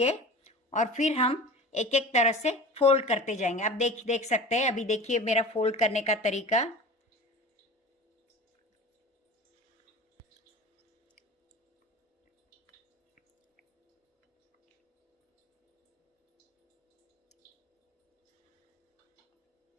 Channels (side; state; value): both; normal; correlation 0.36